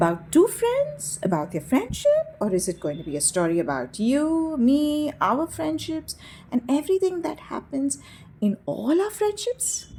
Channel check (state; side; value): identical; both; correlation 1.00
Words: two friends? About their friendship? Or is it going to be a story about you, me, our friendships, and everything that happens in all our friendships?